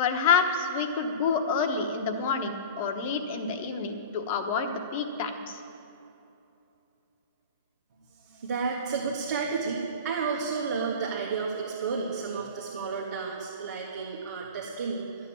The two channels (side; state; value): both; inverted; correlation -0.30